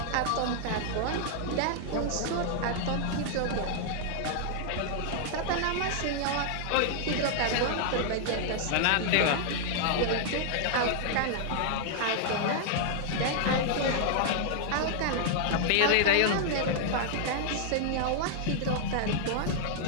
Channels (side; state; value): both; different; correlation -0.01